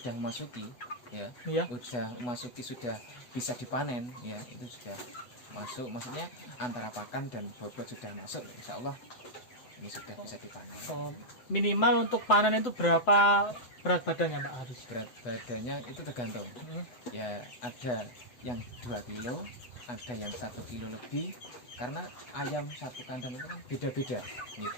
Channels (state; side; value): late; right; 7.8 ms